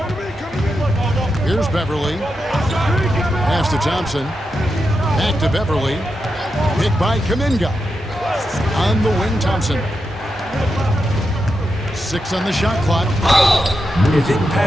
Here's Beverly. Pass to Thompson. Back to Beverly. Hit by Kuminga. On the wing, Thompson. 6 on the shot clock. I think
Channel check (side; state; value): both; normal; correlation 0.87